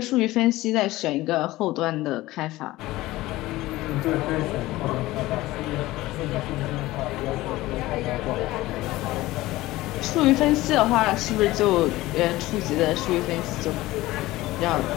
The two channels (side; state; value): right; quieter; 17.9 dB